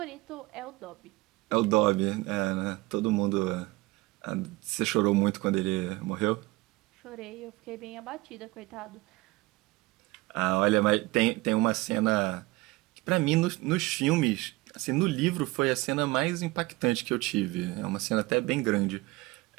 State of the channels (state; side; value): quieter; left; 21.9 dB